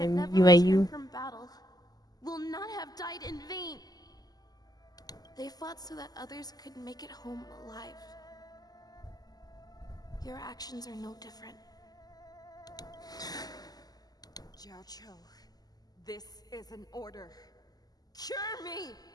that name, never Yueyu. returned from battle, will not have died in vain. They fought so that others could make it home alive. Your actions are no different. Jiao Zhou, this is an order. Cure me!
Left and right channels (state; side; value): late; right; 0.19 ms